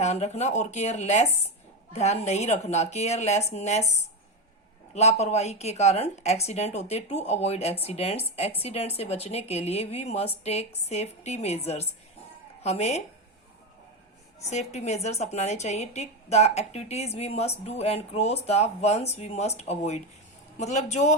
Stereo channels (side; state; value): both; normal; correlation 0.13